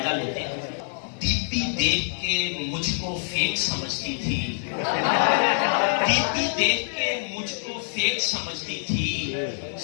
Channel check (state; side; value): silent; right; digital silence